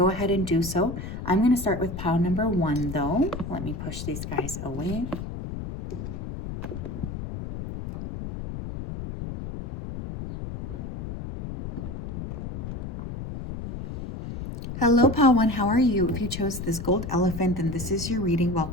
ahead and do so. I'm going to start with pile number 1, though. Let me push these guys away. Hello, pile 1, how are you? If you chose this gold elephant, then this is your reading.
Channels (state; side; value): noise; left; rumble, 7 dB below the sound